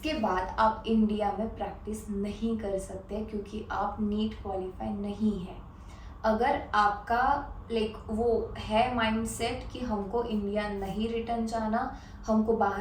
बाद आप इंडिया में प्रैक्टिस नहीं कर सकते क्योंकि आप नीट क्वालिफाई नहीं है। अगर आपका लाइक वो है माइंडसेट कि हमको इंडिया नहीं रिटर्न जाना, हमको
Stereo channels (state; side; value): identical; both; correlation 1.00